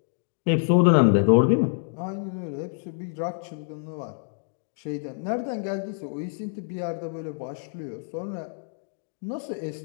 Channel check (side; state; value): right; silent; digital silence